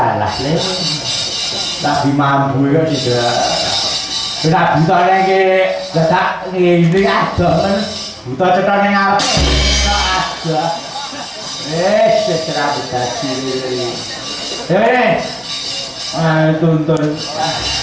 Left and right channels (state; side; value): identical; both; correlation 1.00